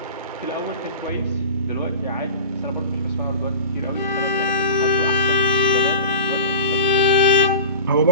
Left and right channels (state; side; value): inverted; both; correlation -0.35